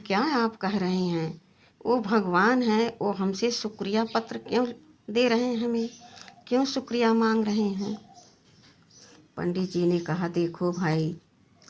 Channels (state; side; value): identical; both; correlation 1.00